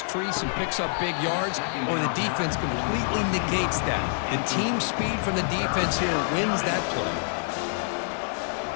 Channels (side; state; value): right; silent; digital silence